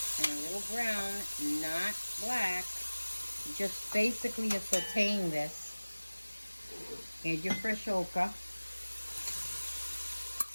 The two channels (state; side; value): inverted; both; correlation -1.00